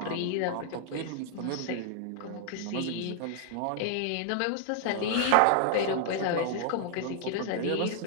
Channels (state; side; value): different; both; correlation 0.00